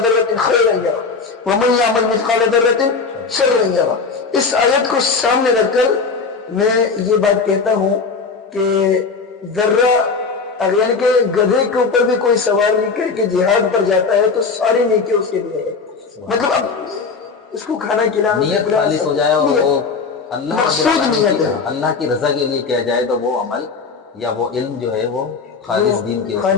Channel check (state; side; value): quieter; right; 4.8 dB